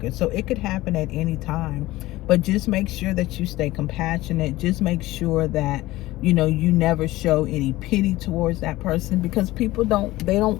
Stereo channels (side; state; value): right; quieter; 17.8 dB